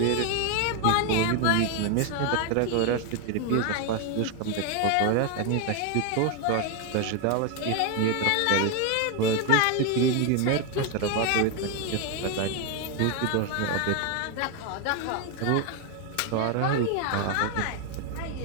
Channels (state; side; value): different; both; correlation 0.01